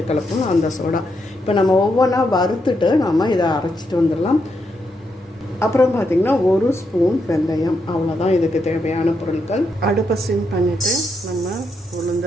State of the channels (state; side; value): normal; both; correlation 0.81